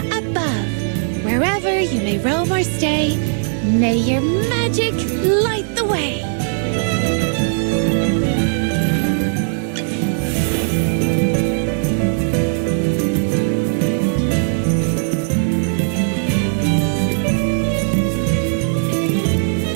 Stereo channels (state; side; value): silent; left; digital silence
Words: above, wherever you may roam or stay, may your magic light the way.